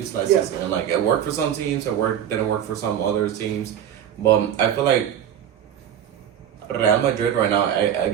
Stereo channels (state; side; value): quieter; left; 9.8 dB